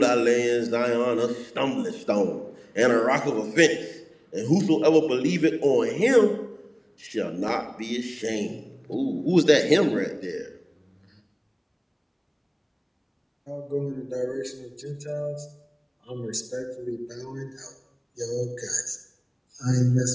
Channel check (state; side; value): identical; both; correlation 1.00